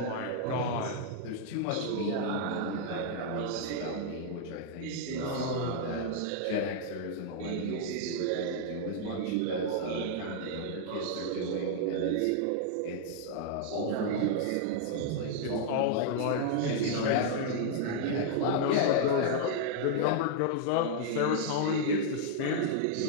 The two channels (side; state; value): both; different; correlation -0.01